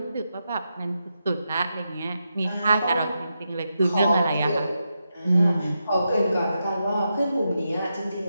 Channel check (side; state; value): both; inverted; correlation -0.86